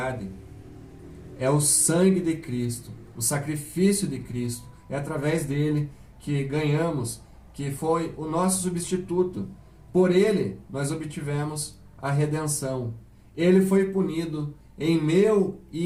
É o sangue de Cristo, o sacrifício de Cristo. É através dele que ganhamos, que foi o nosso substituto. Por ele nós obtivemos a redenção. Ele foi punido em meu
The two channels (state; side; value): identical; both; correlation 1.00